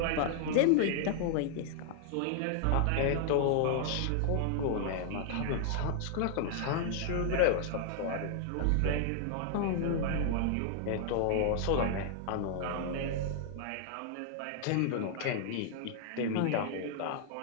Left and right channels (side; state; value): both; different; correlation -0.01